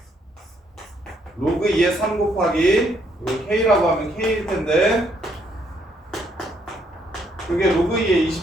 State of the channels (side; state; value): both; normal; correlation 0.71